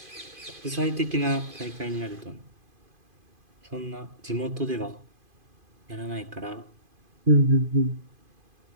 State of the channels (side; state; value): left; late; 2.5 ms